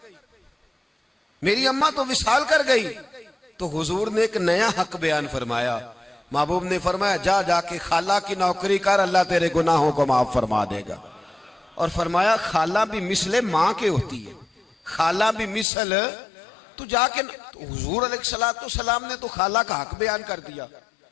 میری اماں تو وصال کر گئی۔ تو حضور نے ایک نیا حق بیان فرمایا، محبوب نے فرمایا جا کے خالہ کی نوکری کر، اللہ تیرے گناہوں کو معاف فرما دے گا۔ اور فرمایا خالہ بھی مثل ماں کے ہوتی ہے، خالہ بھی مثل، تو جا کے حضور علیہ السلام نے تو خالہ کا حق بیان کر دیا،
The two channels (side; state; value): right; drops out; at 15.7 s